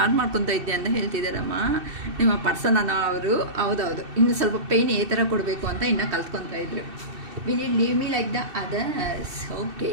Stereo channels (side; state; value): left; late; 2.7 ms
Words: ಮಾಡ್ಕೊತಾ ಇದ್ದೆ ಅಂತ ಹೇಳ್ತಿದ್ದಾರಮ್ಮ ನಿಮ್ಮ ಪರ್ಸನ್ ಅನ್ನೋ ಅವರು. ಹೌದೌದು, ಇನ್ನು ಸ್ವಲ್ಪ ಪೇಯ್ನ್ ಈ ಥರ ಕೊಡಬೇಕು ಅಂತ ಇನ್ನೂ ಕಲ್ತ್ಕೊತಾ ಇದ್ರು. Will you leave me like the others? Okay,